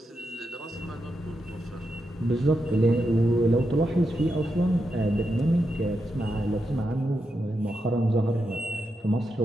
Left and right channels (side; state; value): both; normal; correlation 0.85